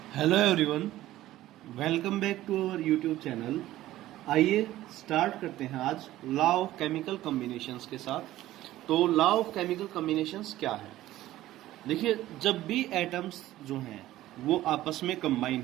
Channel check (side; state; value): left; quieter; 15.0 dB